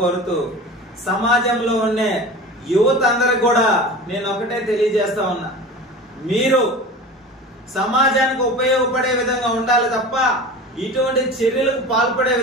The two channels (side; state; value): both; normal; correlation 0.34